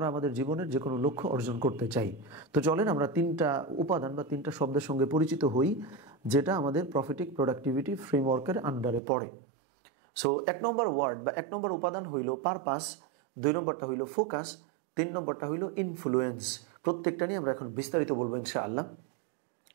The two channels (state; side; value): drops out; left; at 9.0 s